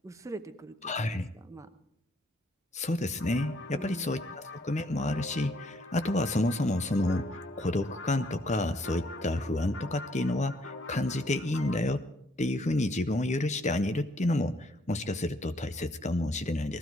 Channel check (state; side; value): normal; both; correlation 0.68